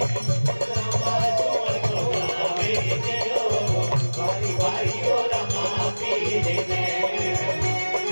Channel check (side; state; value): both; inverted; correlation -1.00